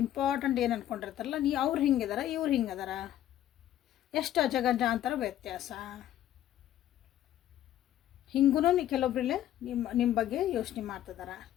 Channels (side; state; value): right; quieter; 12.2 dB